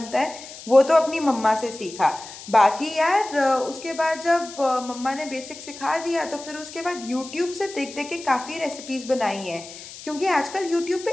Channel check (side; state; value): left; noise; hiss, 15 dB below the sound